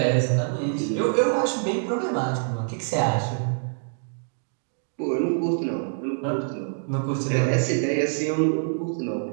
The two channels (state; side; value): silent; left; digital silence